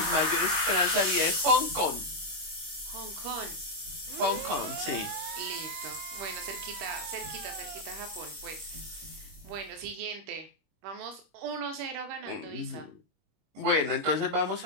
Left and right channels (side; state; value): left; late; 25 ms